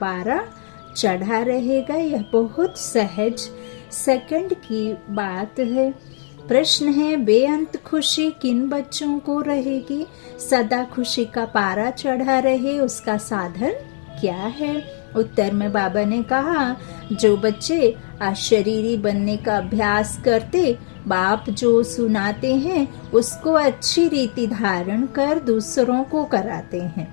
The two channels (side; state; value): right; silent; 65 dB below the other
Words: चढ़ा रहेगा। यह बहुत सहज सेकंड की बात है। प्रश्न है, बेअंत खुशी किन बच्चों को रहेगी? सदा खुशी का पारा चढ़ा रहे उसका साधन क्या है? उत्तर में बाबा ने कहा, जो बच्चे अशरीरी बनने का अभ्यास करते, बाप जो सुनाते हैं उसको अच्छी रीति धारण कर दूसरों को कराते हैं,